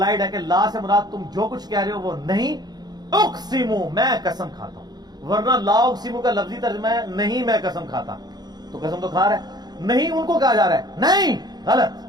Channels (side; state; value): left; late; 0.20 ms